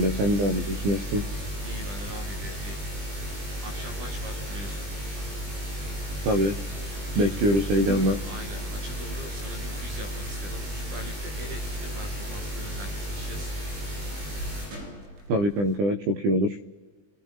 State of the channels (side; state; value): left; late; 20 ms